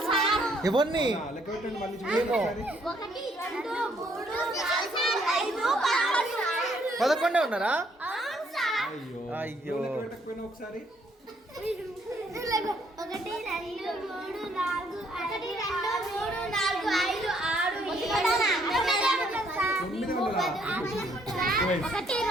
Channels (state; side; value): normal; both; correlation 0.68